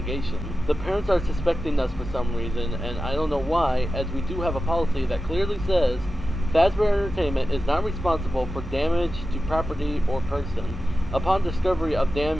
The parents are suspecting us for some reason, and I don't know why, as we do have a policy that clearly says Fazbear Entertainment is not responsible for damage to property or person. Upon discovery of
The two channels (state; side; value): normal; both; correlation 0.93